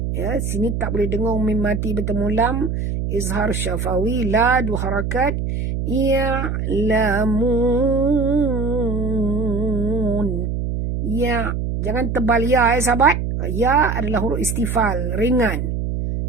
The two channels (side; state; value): right; noise; hum, 2 dB below the sound